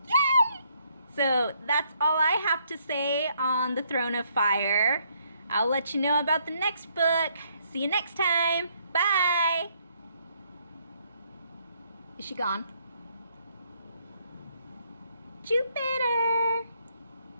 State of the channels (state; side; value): inverted; both; correlation -0.70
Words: Yay! So that's all I have to say on the Throne of Fire. I'll let you know about the next book. See you next time. Bye! Is she gone? Jupiter!